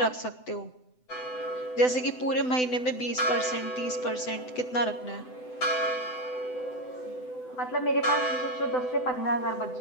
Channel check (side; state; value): right; late; 7.9 ms